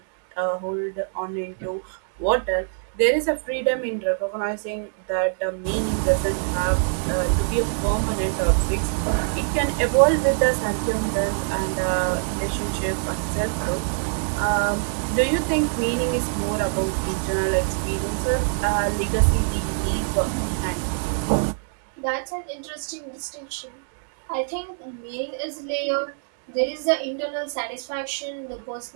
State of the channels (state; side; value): silent; left; digital silence